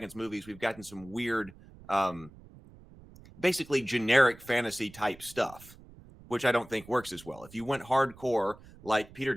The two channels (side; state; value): right; noise; rumble, 21 dB below the sound